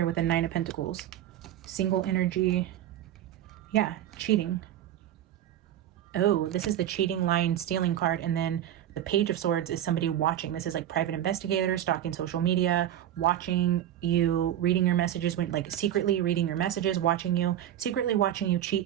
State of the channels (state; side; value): quieter; left; 11.5 dB